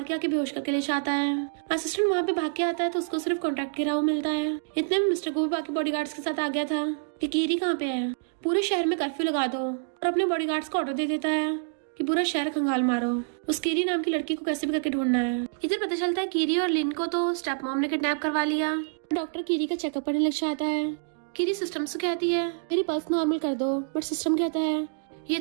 के आके बेहोश करके ले जाता है। असिस्टेंट वहाँ पे भाग के आता है तो उसको सिर्फ कॉन्ट्रैक्ट गिरा हुआ मिलता है। इतने में मिस्टर गू बाकी बॉडीगार्ड्स के साथ आ गया था कि कीरी कहाँ पे है, पूरे शहर में कर्फ्यू लगा दो। और अपने बॉडीगार्ड्स को ऑर्डर दे देता है कि पूरा शहर खंगाल मारो, उस कीरी नाम की लड़की को कैसे भी करके ढूंढना है। इधर पता चलता है कीरी और लिन को तो स्टेप मॉम ने किडनैप करवा लिया। डॉक्टर कीरी का चेकअप करने लग जाता है। कीरी सिस्टम से कहती है मेरी पल्स नॉर्मल कर दो, बट सिस्टम कहता है ये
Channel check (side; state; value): left; silent; digital silence